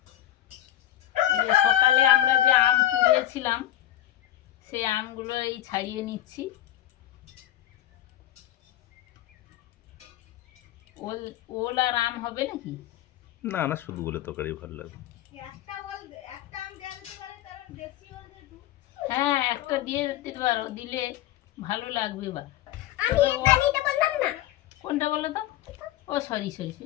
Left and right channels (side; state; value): right; quieter; 13.4 dB